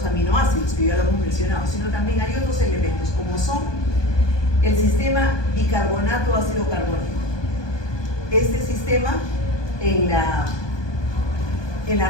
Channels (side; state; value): right; late; 1.2 ms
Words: aminoácidos, que ya lo hemos mencionado, sino también hay otros elementos, como son el sistema bicarbonato ácido carbónico. Este sistema en la